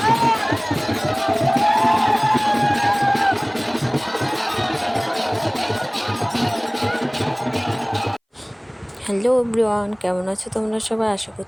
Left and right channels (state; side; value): identical; both; correlation 1.00